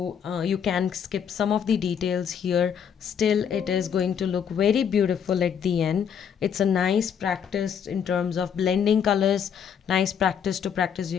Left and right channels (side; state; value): right; quieter; 7.8 dB